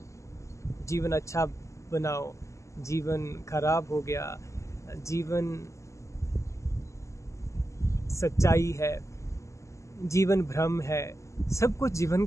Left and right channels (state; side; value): late; right; 0.15 ms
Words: जीवन अच्छा बनाओ, जीवन खराब हो गया, जीवन सच्चाई है, जीवन भ्रम है। सब कुछ जीवन